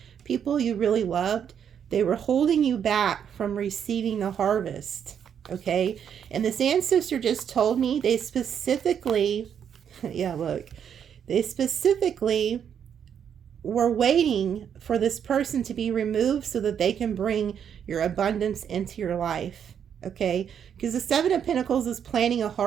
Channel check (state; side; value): quieter; left; 8.3 dB